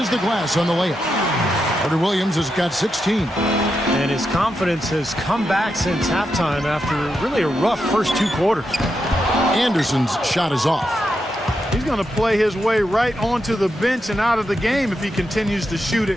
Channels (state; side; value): normal; both; correlation 0.85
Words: the glass on the layup. Carter Williams has got 16. And his confidence has come back since halftime after really a rough first 2 quarters. Anderson's shot is off. He's going to play his way right onto the bench and out of the game if he continues to shoot it